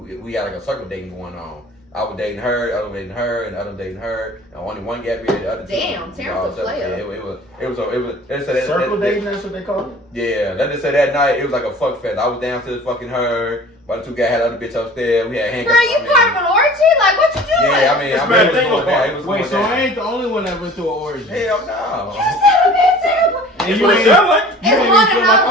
had like a circle dating going on. I was dating her, the other dating her, and the other dating her, and only one got married, the other 2. Damn, Terrence a player. Yeah, it was. Circle dating, that's what they call it? Yeah, let's just say that night it was like a fuck fest. I was downstairs fucking her, but the 2 guys had the other bitch upstairs. We had handcuffs. Girl, you part of an orgy? Like, what you doing? Yeah, I mean, It's it bad was thing going down. It was Wait, going so down. I ain't the only one that went through an orgy. Hell no. You said a bit terrible. And That's you what it ain't, sound like. you ain't even feel like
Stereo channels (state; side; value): normal; both; correlation 0.45